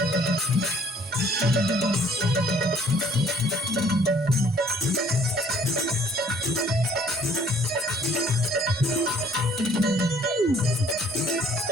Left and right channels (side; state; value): both; normal; correlation 0.58